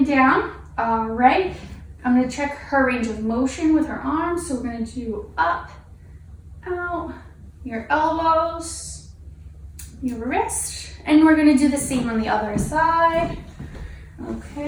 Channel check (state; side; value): identical; both; correlation 1.00